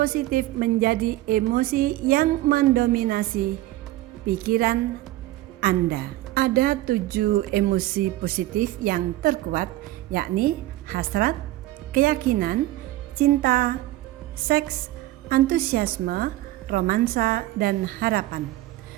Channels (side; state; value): left; quieter; 16.5 dB